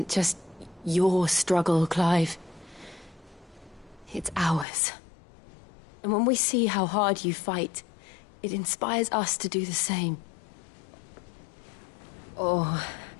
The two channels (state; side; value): drops out; right; at 4.7 s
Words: just your struggle, Clive. It's ours. And when we see how hard you fight, it inspires us to do the same. Or